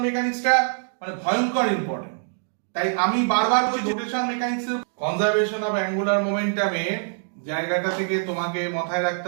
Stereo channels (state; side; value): silent; left; 62 dB below the other